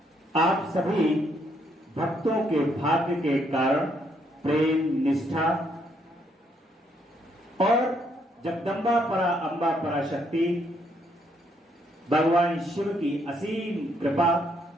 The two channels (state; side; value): normal; both; correlation 0.72